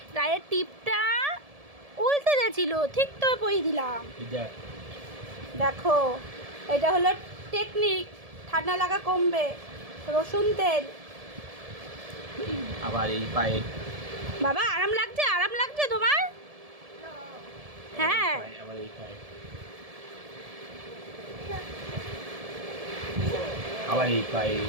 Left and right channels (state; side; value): late; left; 1.7 ms